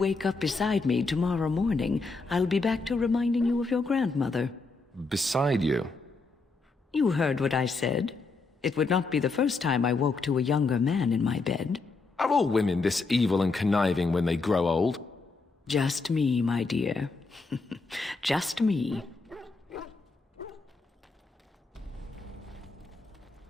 up beside me tomorrow morning, I'll be back to reminding you of your grandmother. Beside you? You heard what I said. It would not be the first time I woke to a younger man in my bed. Are all women this evil and conniving when they grow old? Just me, my dear. Just me.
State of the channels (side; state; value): right; quieter; 3.8 dB